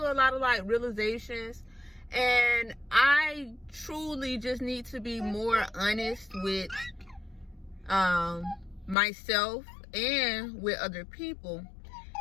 lot of like realizations, and I truly just need to be more honest with myself and with other people.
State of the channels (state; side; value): drops out; right; at 9.0 s